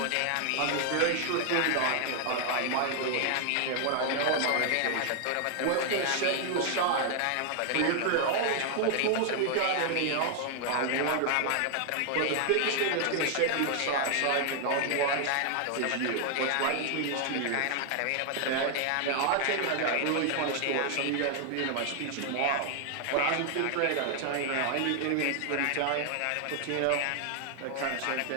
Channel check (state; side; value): different; both; correlation 0.00